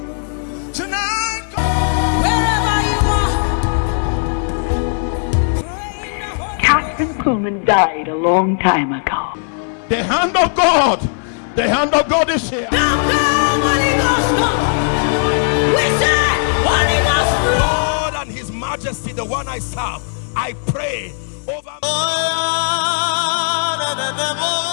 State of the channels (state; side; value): silent; right; 57 dB below the other